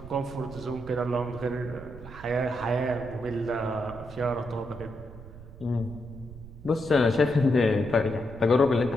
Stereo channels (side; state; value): right; noise; rumble, 15 dB below the sound